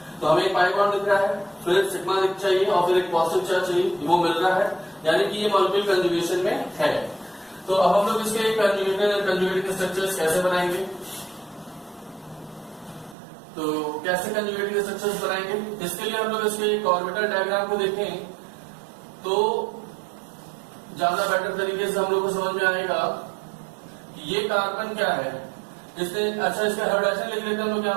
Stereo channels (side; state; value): left; drops out; at 13.2 s